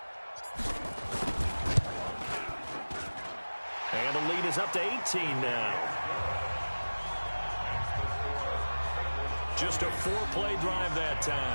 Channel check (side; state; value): both; inverted; correlation -1.00